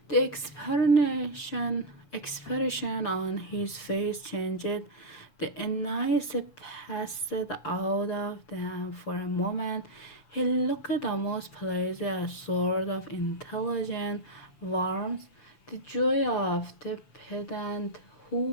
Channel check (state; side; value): late; right; 6.7 ms